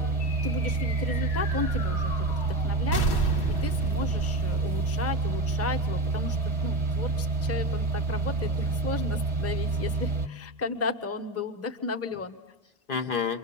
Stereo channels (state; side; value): normal; both; correlation 0.20